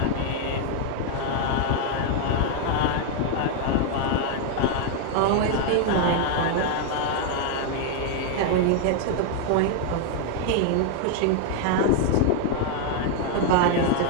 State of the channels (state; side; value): different; both; correlation 0.00